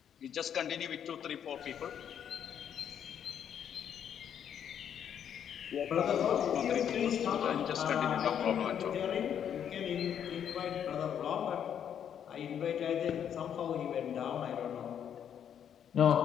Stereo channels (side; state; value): right; quieter; 8.9 dB